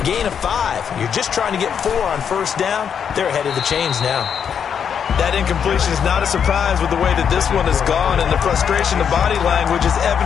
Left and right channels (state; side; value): quieter; right; 7.6 dB